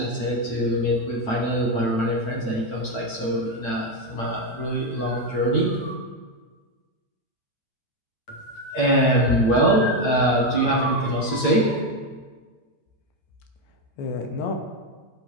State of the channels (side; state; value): right; late; 8.9 ms